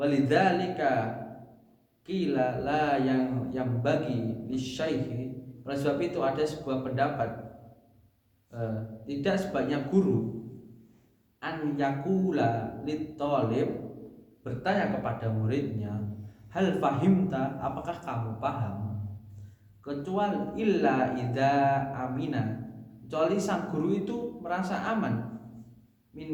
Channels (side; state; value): both; identical; correlation 1.00